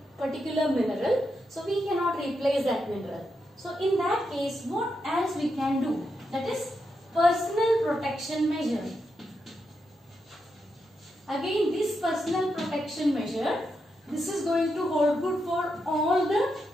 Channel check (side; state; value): both; normal; correlation 0.84